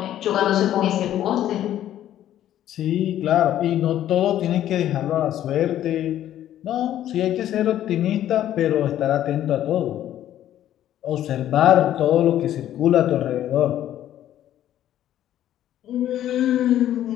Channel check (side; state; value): right; quieter; 12.0 dB